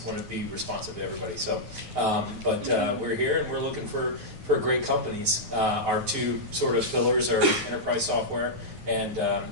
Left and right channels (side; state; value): left; late; 9.4 ms